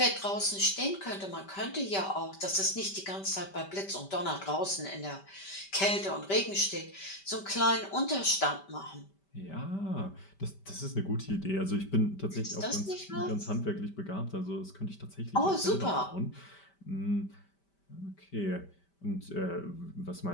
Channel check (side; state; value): right; late; 5.1 ms